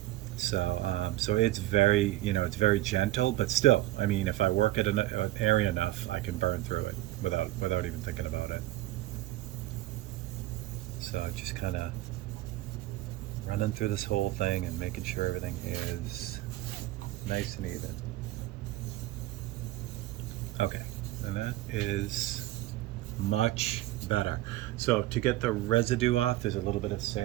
So, so it's very, you know, it's very gentle, but still, I mean, if I work at an area enough, I can burn through it without even thinking about it. So just kind of running through this whole thing and making sure everything is nice and even. And that is much better. So to get the residue off, there's a little bit of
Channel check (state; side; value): quieter; left; 16.4 dB